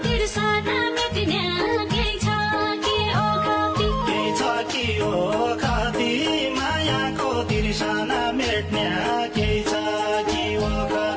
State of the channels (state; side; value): identical; both; correlation 1.00